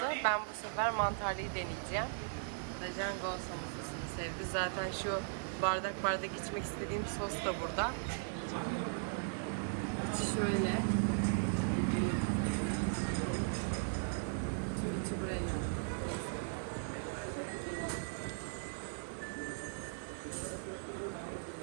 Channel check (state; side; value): silent; left; 52 dB below the other